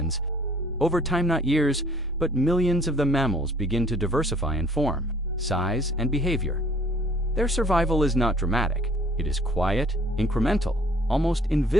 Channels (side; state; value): both; normal; correlation 0.57